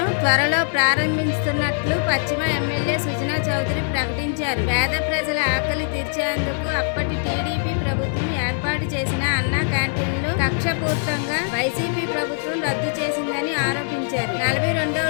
త్వరలో ప్రారంభిస్తున్నట్లు పశ్చిమ ఎమ్మెల్యే సుజనా చౌదరి ప్రకటించారు. పేద ప్రజల ఆకలి తీర్చేందుకు అప్పటి టీడీపీ ప్రభుత్వం ఏర్పాటు చేసిన అన్నా క్యాంటీన్లు కక్షపూర్తంగా వైసీపీ ప్రభుత్వం రద్దు చేసిందని ఆరోపించారు. 42వ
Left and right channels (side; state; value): right; silent; digital silence